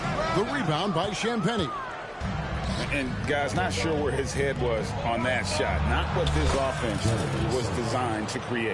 The rebound by Champagnie. And guys, not sure where his head was on that shot. Not what this offense was designed to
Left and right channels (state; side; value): identical; both; correlation 1.00